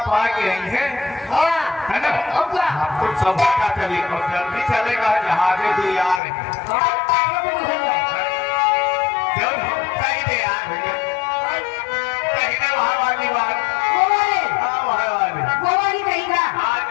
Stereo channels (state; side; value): drops out; right; at 6.2 s